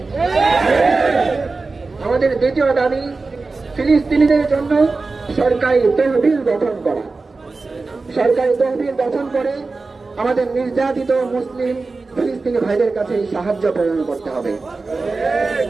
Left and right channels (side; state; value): left; quieter; 3.8 dB